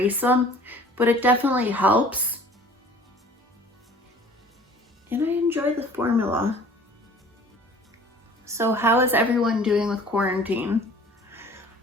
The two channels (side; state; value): both; normal; correlation 0.49